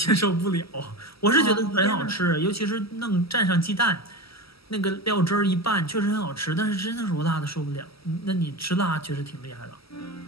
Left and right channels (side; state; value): right; late; 0.76 ms